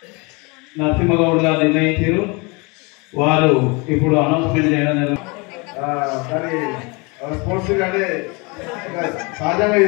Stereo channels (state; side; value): quieter; right; 28.8 dB